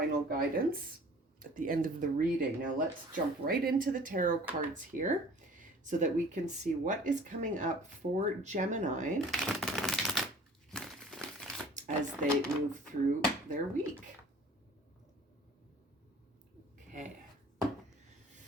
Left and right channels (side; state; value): both; normal; correlation 0.48